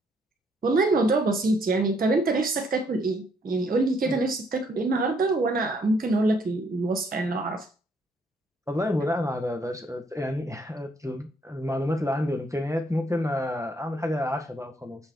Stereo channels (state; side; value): normal; both; correlation 0.68